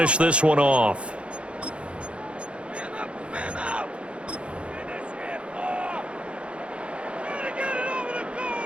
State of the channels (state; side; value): late; left; 0.059 ms